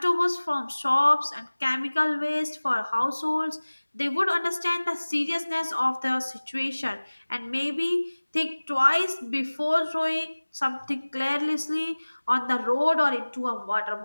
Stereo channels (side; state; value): both; inverted; correlation -1.00